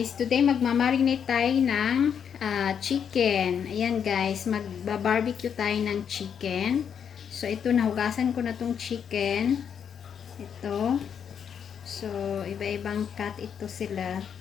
Today magmamarinate tayo ng chicken. Ayan guys, magba-barbecue tayo ng chicken. So ito, nahugasan ko na tong chicken. Ito. So iba-ibang cut ito sila.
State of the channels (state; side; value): quieter; right; 7.8 dB